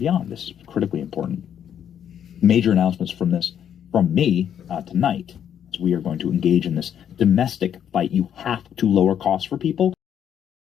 This is critically important. Major announcements from me tonight. We are going to engage in this domestic fight. You have to lower costs for people.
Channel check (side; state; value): right; quieter; 9.2 dB